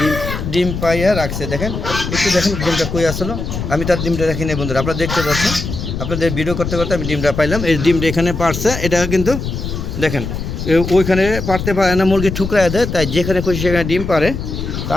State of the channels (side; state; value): left; noise; rumble, 5 dB below the sound